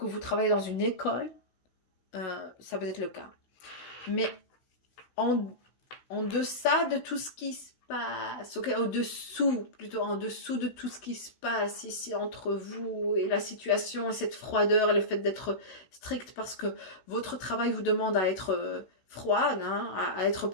vous travaillez dans une école. Ça peut être le cas. Mais en deçà de tout ce qui se passe, ok, au-dessous, plutôt en dessous de tout ce qui se passe ici entre vous et la situation et cette froideur et le fait d'être strict parce que votre travail vous demande à être froide, hein, à être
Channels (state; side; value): late; right; 16 ms